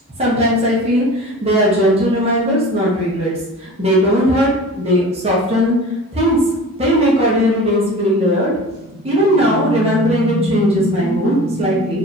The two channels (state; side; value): normal; both; correlation 0.38